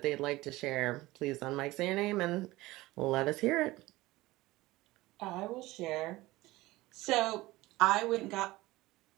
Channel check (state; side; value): quieter; left; 19.0 dB